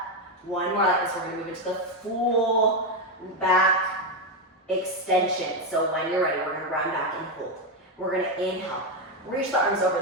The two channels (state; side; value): normal; both; correlation 0.07